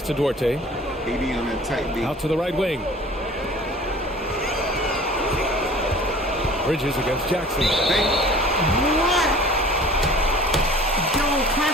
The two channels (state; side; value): normal; both; correlation 0.45